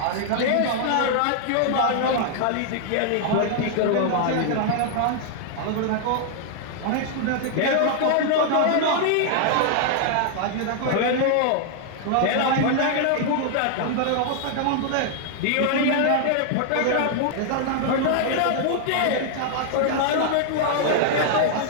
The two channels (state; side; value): different; both; correlation 0.00